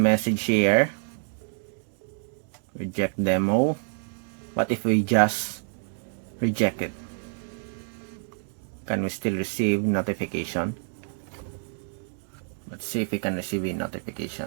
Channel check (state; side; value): silent; left; digital silence